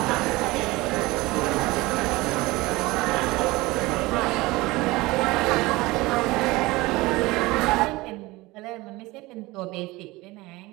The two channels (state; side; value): quieter; left; 21.0 dB